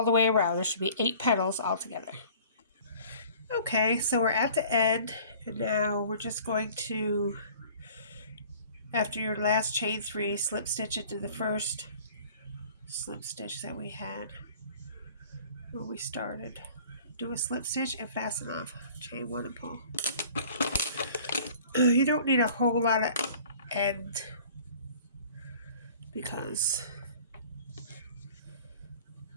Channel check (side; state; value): both; inverted; correlation -0.49